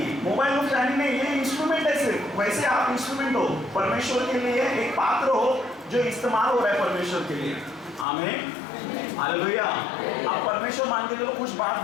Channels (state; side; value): drops out; right; at 8.1 s